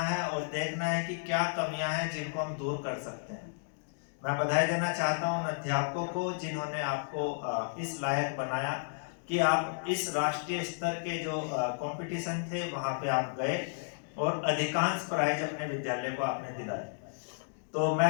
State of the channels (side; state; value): right; silent; digital silence